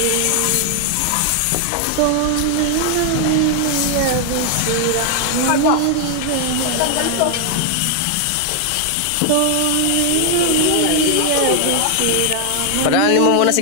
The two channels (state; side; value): different; both; correlation 0.00